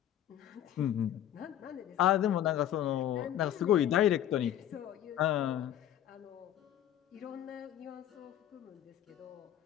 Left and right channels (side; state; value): right; quieter; 11.4 dB